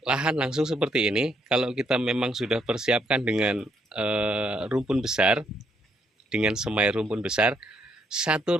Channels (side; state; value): both; normal; correlation 0.73